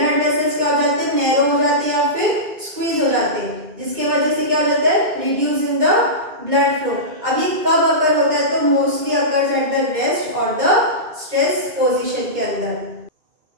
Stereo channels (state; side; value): late; left; 2.2 ms